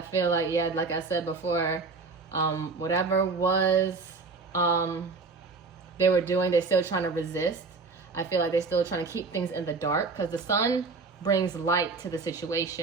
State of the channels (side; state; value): left; quieter; 4.2 dB